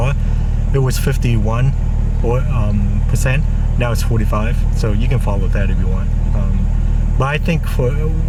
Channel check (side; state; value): both; identical; correlation 1.00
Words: it was 51 percent. Now it's 45. So you can follow that if you want. But I think for